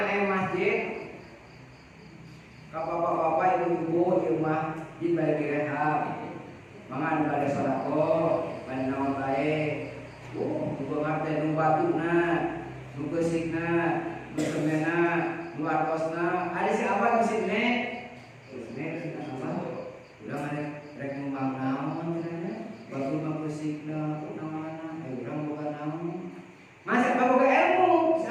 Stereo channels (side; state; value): both; identical; correlation 1.00